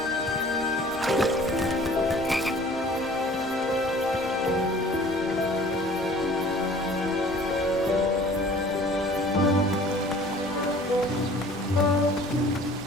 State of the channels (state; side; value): noise; right; rumble, 19 dB below the sound